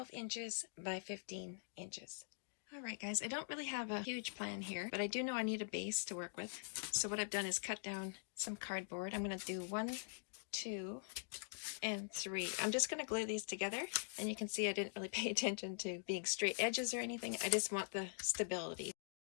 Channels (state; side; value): silent; right; digital silence